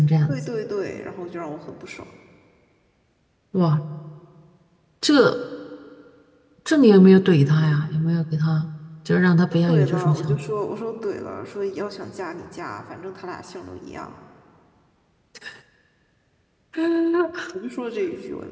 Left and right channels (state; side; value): identical; both; correlation 1.00